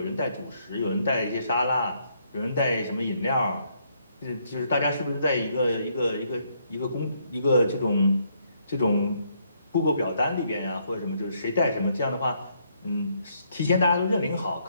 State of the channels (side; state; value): both; inverted; correlation -0.72